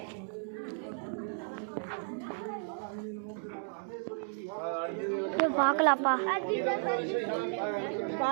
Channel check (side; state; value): left; silent; 55 dB below the other